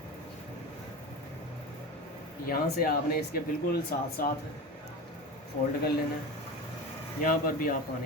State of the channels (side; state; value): both; normal; correlation 0.27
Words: यहाँ से आपने इसके बिल्कुल साथ साथ फोल्ड कर लेना है। यहाँ पर भी आप